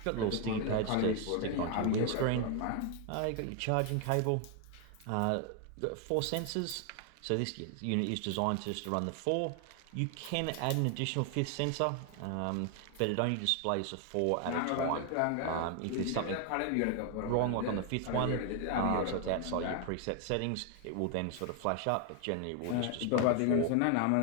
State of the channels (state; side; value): different; both; correlation 0.00